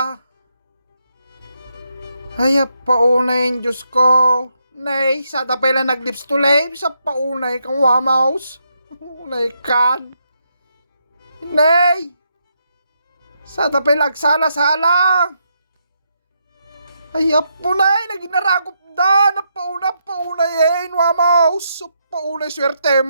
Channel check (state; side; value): inverted; both; correlation -0.80